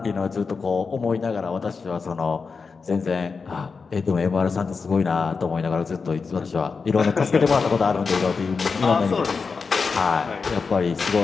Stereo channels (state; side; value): quieter; right; 4.9 dB